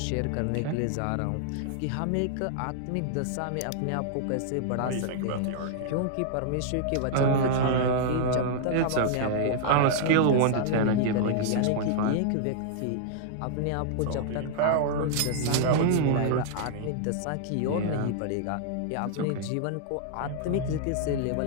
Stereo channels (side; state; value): both; different; correlation -0.01